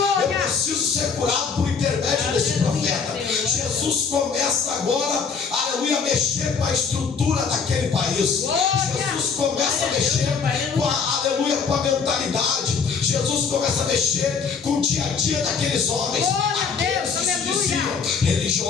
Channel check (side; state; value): right; quieter; 5.7 dB